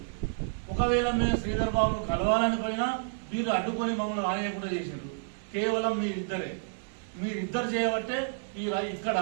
ఒకవేళ మేము శ్రీధర్ బాబును కలవాలని పోయినా మీరు అడ్డుకొని మమ్మల్ని రానియకుండా చేశారు. కేవలం మీరిద్దరు చేయబట్టే ఇక్కడ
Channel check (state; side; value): silent; left; digital silence